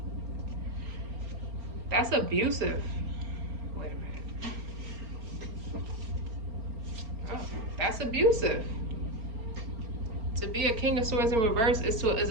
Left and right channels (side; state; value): left; late; 4.3 ms